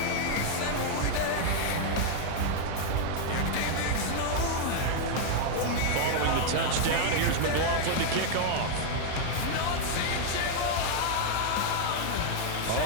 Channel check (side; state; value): both; different; correlation 0.00